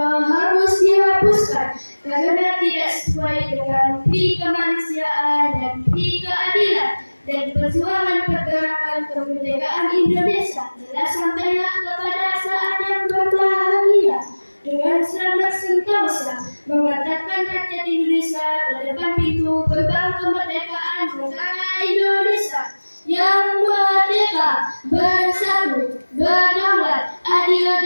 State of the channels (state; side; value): inverted; both; correlation -1.00